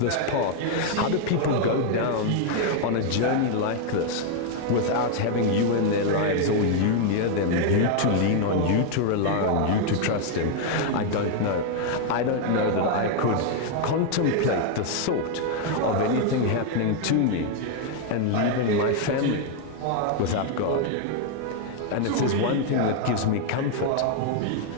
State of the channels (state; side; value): different; both; correlation 0.00